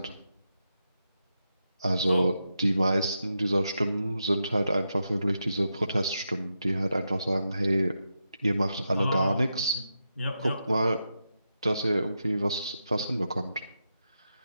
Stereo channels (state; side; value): inverted; both; correlation -0.87